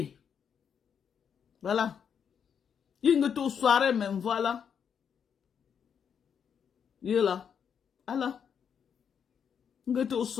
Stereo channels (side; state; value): right; quieter; 7.5 dB